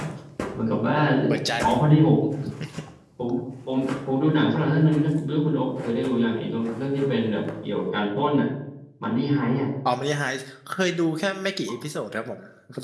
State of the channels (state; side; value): identical; both; correlation 1.00